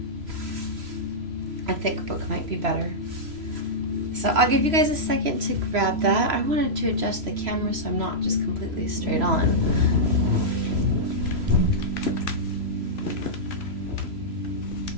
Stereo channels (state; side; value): late; left; 3.0 ms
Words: A thick book might be better. So I'll give you guys a second to grab that. I wanted to adjust the camera so I'm not just completely straight on.